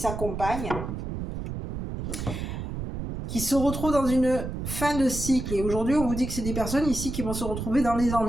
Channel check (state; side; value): noise; right; rumble, 6 dB below the sound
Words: qui se retrouvent dans une fin de cycle. Et aujourd'hui, on vous dit que c'est des personnes ici qui vont se retrouver dans les